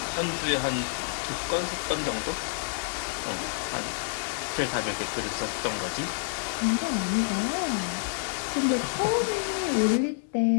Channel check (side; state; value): right; silent; digital silence